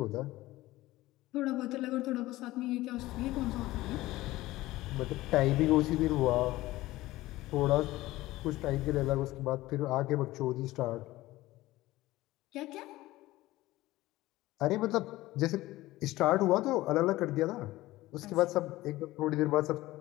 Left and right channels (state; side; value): quieter; right; 17.5 dB